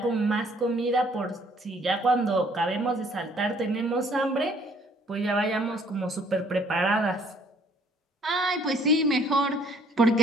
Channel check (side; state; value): both; normal; correlation 0.61